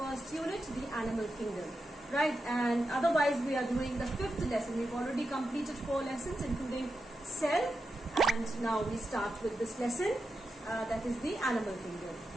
unit, the animal kingdom. Right, and otherwise we are doing the fifth lesson. We've already completed 4 lessons, including cell, and now we start with this lesson, that is the animal kingdom.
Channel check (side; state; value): both; normal; correlation 0.88